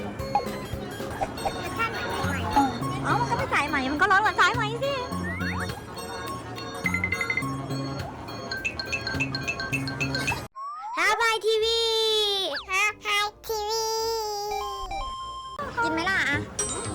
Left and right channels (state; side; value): identical; both; correlation 1.00